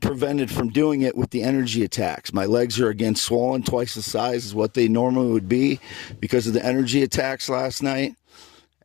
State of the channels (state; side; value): quieter; right; 19.8 dB